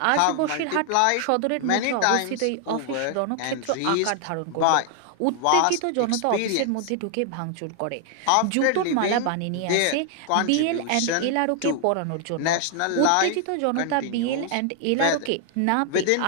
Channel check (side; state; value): both; different; correlation 0.00